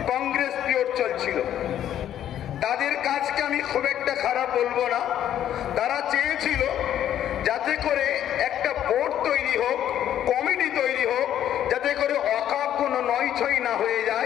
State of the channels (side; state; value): right; quieter; 10.9 dB